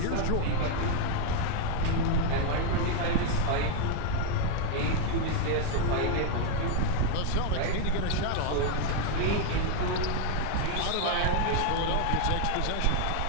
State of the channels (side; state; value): both; different; correlation 0.00